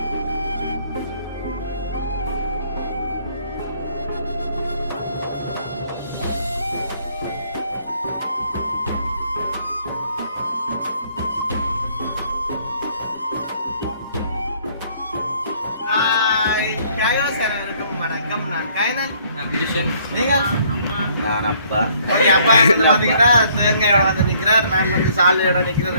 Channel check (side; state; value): both; inverted; correlation -0.63